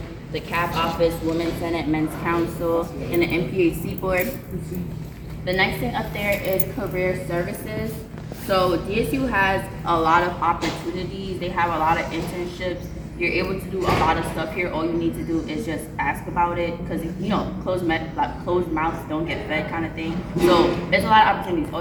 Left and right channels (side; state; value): both; identical; correlation 1.00